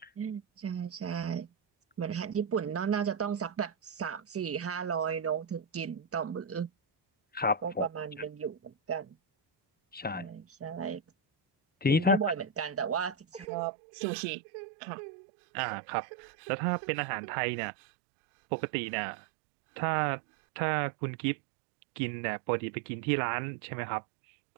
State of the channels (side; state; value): left; drops out; at 13.5 s